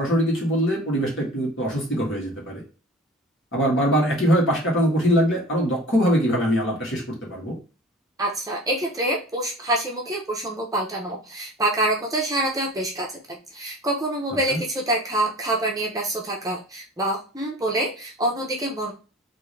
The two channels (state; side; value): normal; both; correlation 0.41